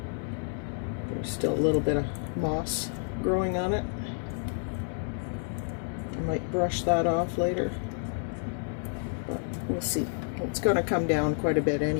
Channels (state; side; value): silent; right; 58 dB below the other